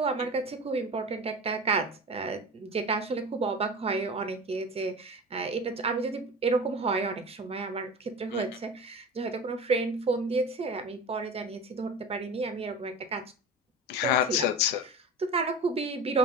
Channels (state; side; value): normal; both; correlation 0.31